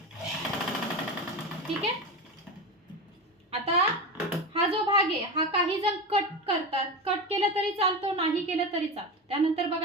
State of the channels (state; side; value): normal; both; correlation 0.22